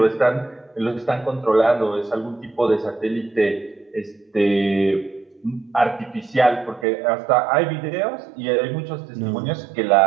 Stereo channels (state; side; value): drops out; left; at 6.9 s